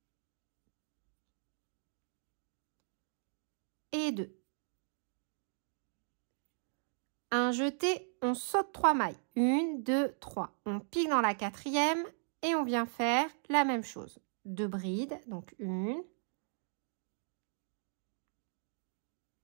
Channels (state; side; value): silent; left; digital silence